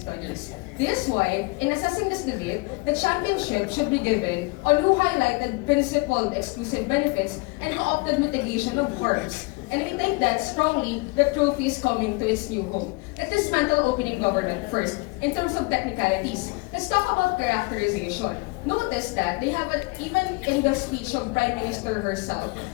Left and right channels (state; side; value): quieter; right; 26.1 dB